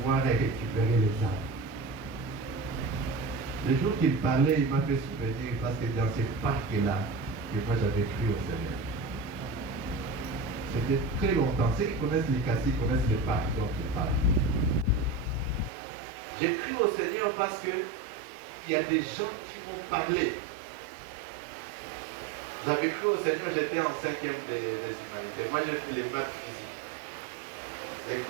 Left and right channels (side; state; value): left; drops out; at 15.7 s